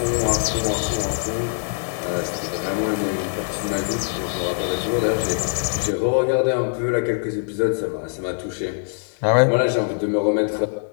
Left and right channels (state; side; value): silent; right; digital silence